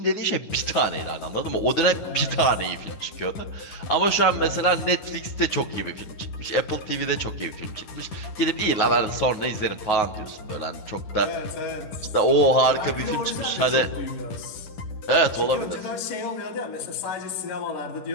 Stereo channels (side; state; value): right; late; 9.5 ms